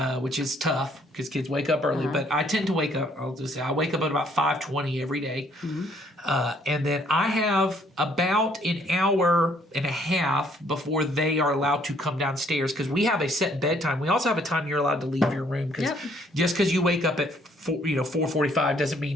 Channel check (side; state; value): both; normal; correlation 0.64